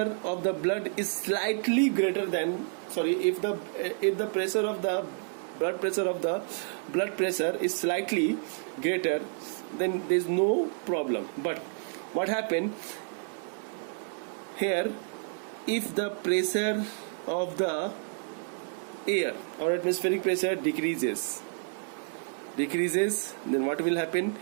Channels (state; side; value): silent; left; 58 dB below the other